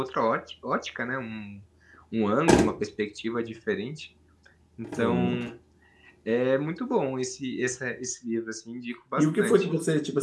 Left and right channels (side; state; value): both; identical; correlation 1.00